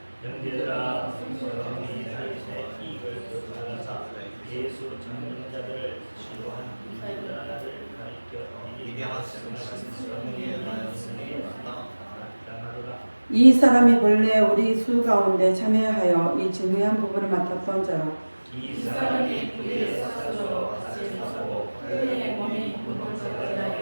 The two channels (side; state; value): both; inverted; correlation -1.00